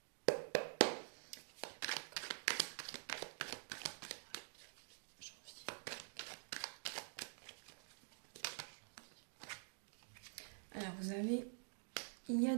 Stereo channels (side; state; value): left; silent; digital silence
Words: Alors, il y a